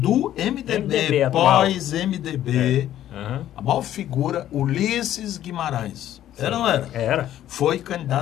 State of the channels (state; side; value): quieter; right; 12.1 dB